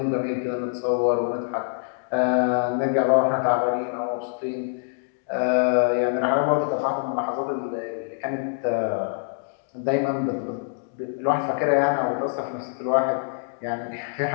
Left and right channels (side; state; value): right; silent; digital silence